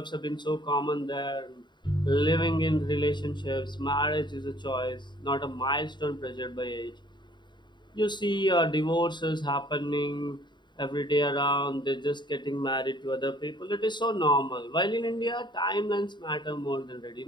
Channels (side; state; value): right; late; 0.22 ms